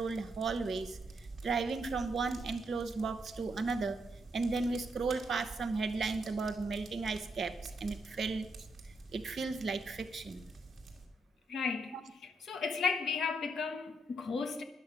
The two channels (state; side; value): normal; both; correlation 0.78